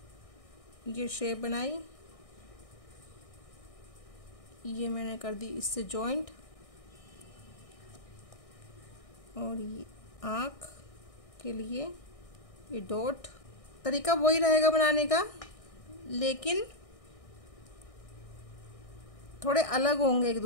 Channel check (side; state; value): right; late; 1.6 ms